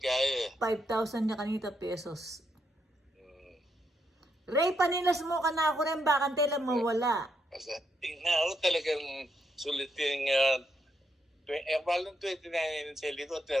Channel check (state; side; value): normal; both; correlation 0.78